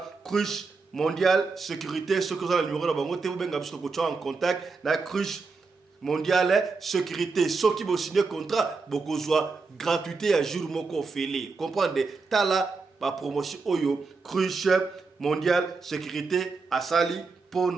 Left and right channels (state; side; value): quieter; left; 4.3 dB